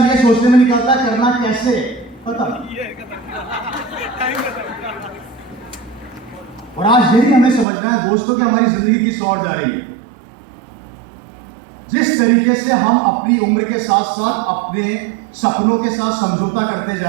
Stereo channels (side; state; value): left; drops out; at 7.7 s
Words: ये सोचने में निकालता है करना कैसे। पता। और आज यही हमें समझना है दोस्तों कि हमारी जिंदगी किस ओर जा रही है। जिस तरीके से हम अपनी उम्र के साथ साथ अपने सपनों के साथ समझौता करते